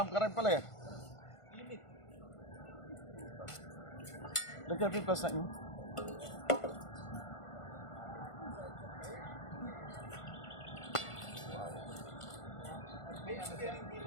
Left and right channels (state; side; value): late; right; 1.5 ms